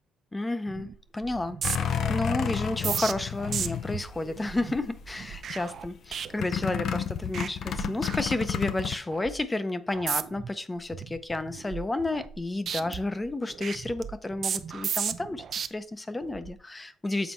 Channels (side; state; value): both; normal; correlation 0.84